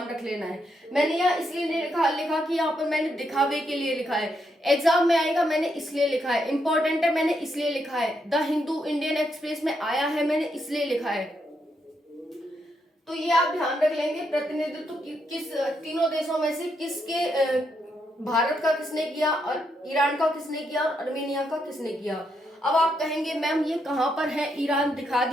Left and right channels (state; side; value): normal; both; correlation 0.79